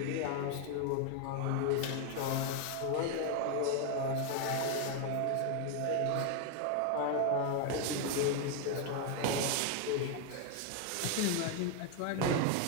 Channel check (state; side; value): different; both; correlation 0.01